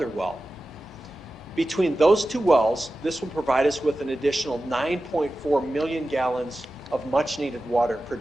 well. Between those 2 wells, this will provide us with an additional 9.4 million gallons of much needed water per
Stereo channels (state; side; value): normal; both; correlation 0.94